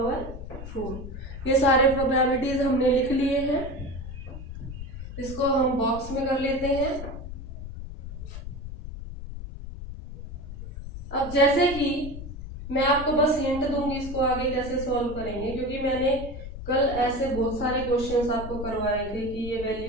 4। ये सारे probabilities हमने लिख लिए हैं। इसको हम बॉक्स में कर लेते हैं। अब जैसे कि मैं आपको बस हिंट दूंगी इसको आगे कैसे सॉल्व करेंगे, क्योंकि मैंने कल ऐसे बहुत सारे क्वेश्चंस आपको करवाए थे कि ये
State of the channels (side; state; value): left; noise; rumble, 10 dB below the sound